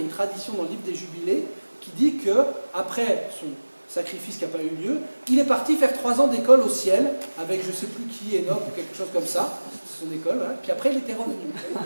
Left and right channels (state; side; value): inverted; both; correlation -1.00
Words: tradition dans le livre des Jubilés qui dit qu'après son sacrifice qui n'a pas eu lieu, il est parti faire 3 ans d'école au ciel, avec je ne sais plus qui, Enoch ou quelque chose comme ça, son école, hein. Puis après il était revenu.